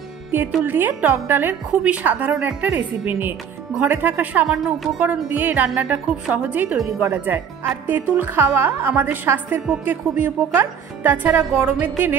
তেঁতুল দিয়ে টক ডালের খুবই সাধারণ একটা রেসিপি নিয়ে। ঘরে থাকা সামান্য উপকরণ দিয়ে এই রান্নাটা খুব সহজেই তৈরি করা যায়। আর তেঁতুল খাওয়া আমাদের স্বাস্থ্যের পক্ষে খুবই উপকার। তাছাড়া গরমের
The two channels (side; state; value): left; quieter; 7.6 dB